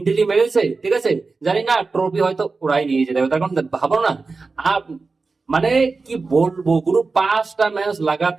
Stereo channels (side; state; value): left; quieter; 4.1 dB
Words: মেরেছে, ঠিক আছে, জানি না ট্রফি হয়তো ওরাই নিয়ে যেতে হবে। তার কারণ ভাবো না, আর মানে কি বলবো, পুরো 5টা ম্যাচ